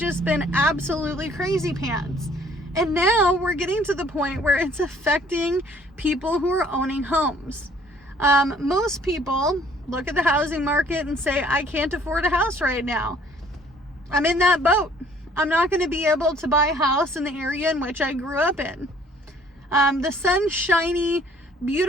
been absolutely crazy pants. And now we're getting to the point where it's affecting people who are owning homes. Most people look at the housing market and say, I can't afford a house right now. I'm in that boat. I'm not going to be able to buy a house in the area in which I grew up in. The sunshiny,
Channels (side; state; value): both; normal; correlation 0.58